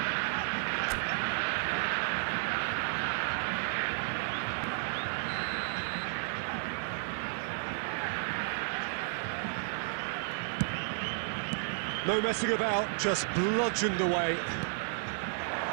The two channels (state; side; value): silent; left; 56 dB below the other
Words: No messing about, just bludgeoned away.